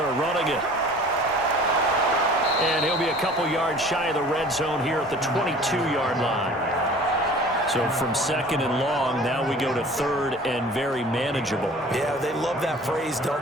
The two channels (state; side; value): normal; both; correlation 0.46